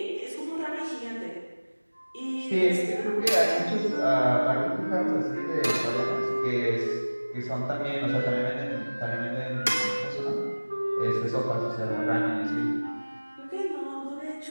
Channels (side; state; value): both; inverted; correlation -1.00